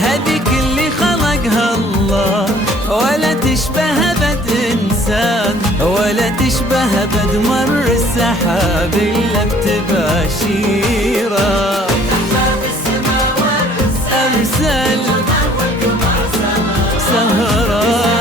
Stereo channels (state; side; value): normal; both; correlation 0.56